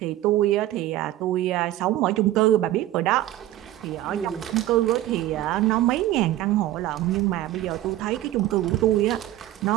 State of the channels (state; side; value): quieter; left; 14.5 dB